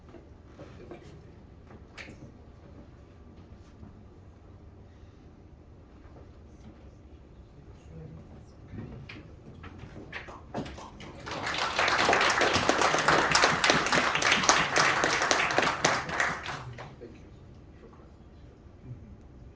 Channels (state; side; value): identical; both; correlation 1.00